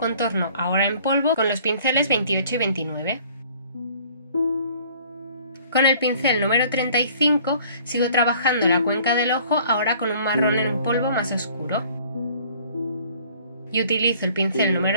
ahora en polvo con los pinceles 28 y 29. Con el pincel número 35 sigo trabajando la cuenca del ojo ahora con un marrón en polvo más oscuro. Y utilizo el pincel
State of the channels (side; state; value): both; inverted; correlation -0.54